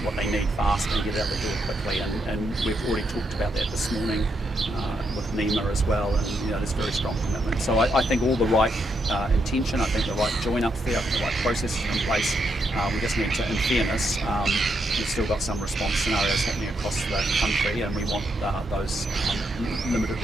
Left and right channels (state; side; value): normal; both; correlation 0.79